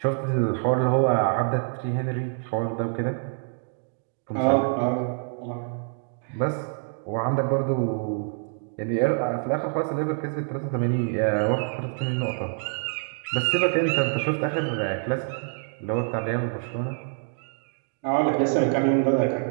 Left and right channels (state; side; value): silent; left; 61 dB below the other